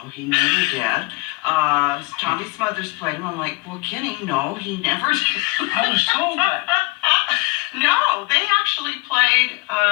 he never did. Tommy Smothers played him. I'm like, well, Kenny, no, he never did. I was told that. No, they actually played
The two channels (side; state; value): right; quieter; 25.6 dB